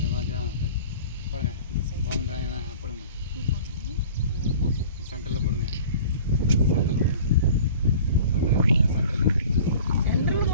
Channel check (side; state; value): both; inverted; correlation -0.44